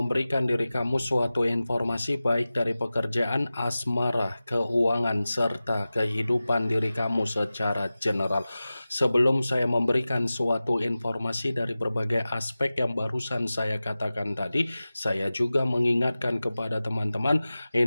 diri kamu suatu informasi baik dari pekerjaan, asmara, keuangan, serta kehidupan diri kamu secara general. Sebelum saya memberikan suatu informasi dari berbagai aspek yang barusan saya katakan tadi, saya juga mengingatkan kepada teman-teman,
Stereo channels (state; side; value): inverted; both; correlation -0.96